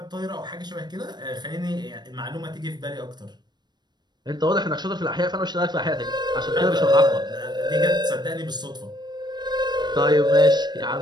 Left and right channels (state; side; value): late; left; 0.21 ms